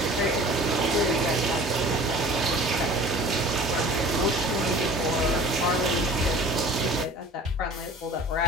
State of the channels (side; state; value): both; normal; correlation 0.44